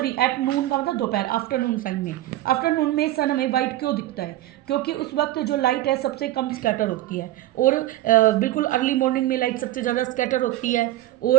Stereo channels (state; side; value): quieter; left; 15.2 dB